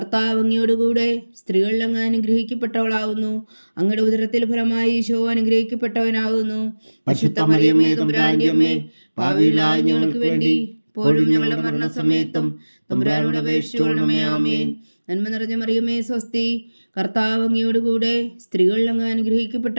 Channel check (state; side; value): inverted; both; correlation -1.00